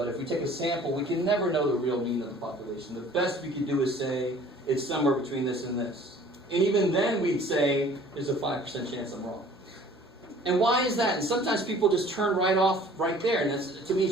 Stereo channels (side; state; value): both; normal; correlation 0.50